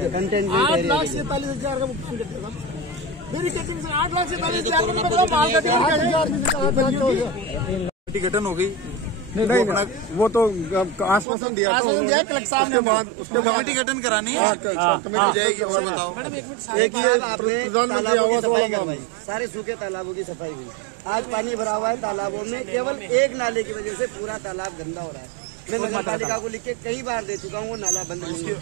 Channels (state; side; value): drops out; left; at 11.2 s